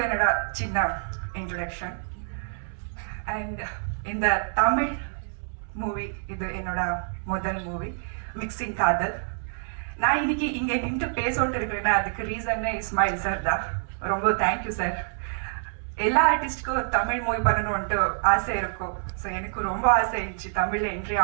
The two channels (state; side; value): silent; left; 60 dB below the other